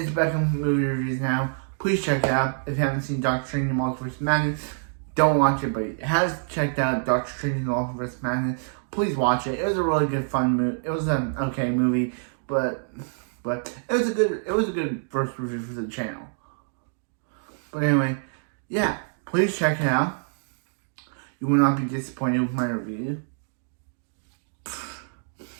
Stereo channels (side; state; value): left; silent; digital silence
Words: Beckham's movie reviews now. Please check it out. If you haven't seen Doctor Strange and Multiverse of Madness, don't watch it. But if you have checked out Doctor Strange and Multiverse of Madness, please watch it. It was a really good, fun movie. It was an okay movie, but it was a good first review for the channel. But anyway, please check it out. You will not be disappointed with my review.